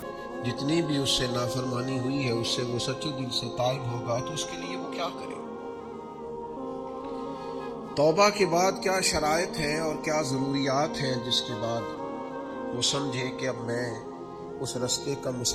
جتنی بھی اس سے نافرمانی ہوئی ہے اس سے وہ سچے دل سے تائب ہوگا، تو اس کے لیے وہ کیا کرے؟ توبہ کے بعد کیا شرائط ہیں اور کیا ضروریات ہیں جس کے بعد وہ سمجھے کہ اب میں اس رستے کا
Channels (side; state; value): both; identical; correlation 1.00